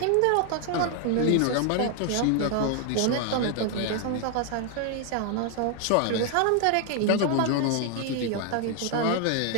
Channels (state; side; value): different; both; correlation 0.00